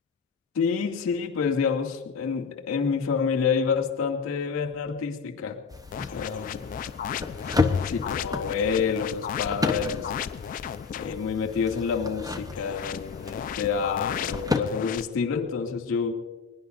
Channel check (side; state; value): right; quieter; 5.5 dB